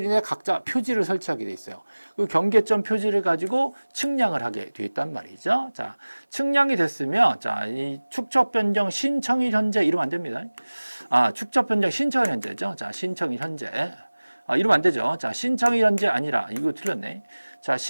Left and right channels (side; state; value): both; inverted; correlation -1.00